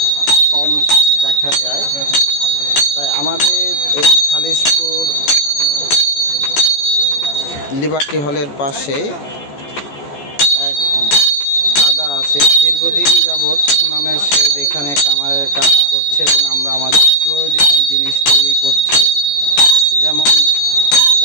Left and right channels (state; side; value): late; right; 14 ms